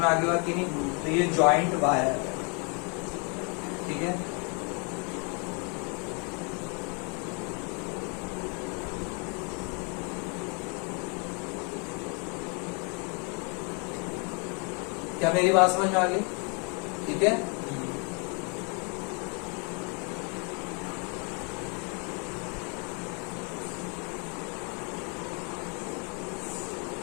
आ गया कि नहीं? तो ये जॉइंट वायर है, ठीक है। क्या मेरी बात समझ में आ गई? ठीक है।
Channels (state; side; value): quieter; right; 35.1 dB